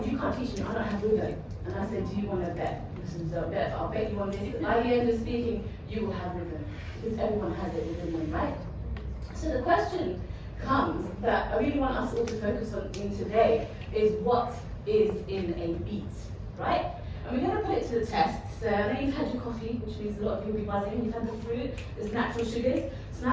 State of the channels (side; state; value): both; identical; correlation 1.00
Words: you can't teach me, I don't have rhythm. And I said, do you want to bet? So I'll bet you on this. By the end of speaking, you will have rhythm. Because everyone has it within them, right? So the question comes that I really want us all to focus on in today is what is in a beat, right? And we're going to put it to the test. So I know you've had your coffee, which means a lot of you will be buzzing. You've had the fruit, there's natural sugars. So